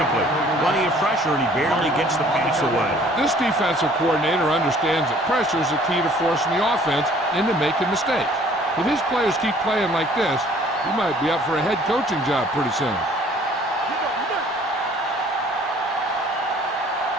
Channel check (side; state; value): both; normal; correlation 0.55